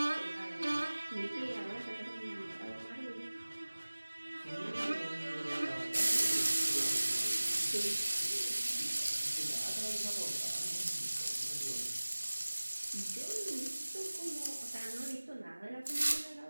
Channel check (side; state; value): both; inverted; correlation -1.00